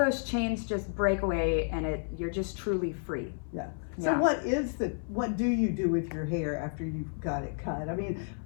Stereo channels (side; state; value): right; silent; 57 dB below the other